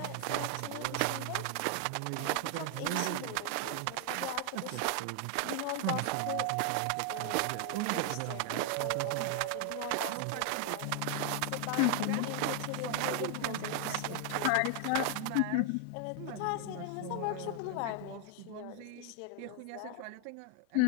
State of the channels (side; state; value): both; different; correlation 0.00